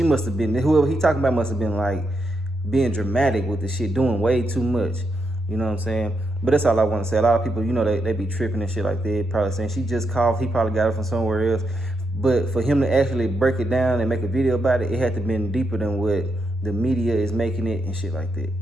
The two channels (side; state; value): both; normal; correlation 0.82